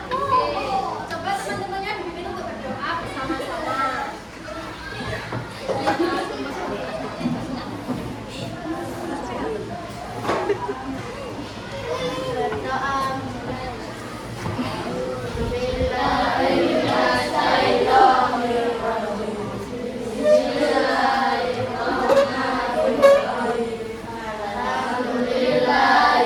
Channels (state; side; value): identical; both; correlation 1.00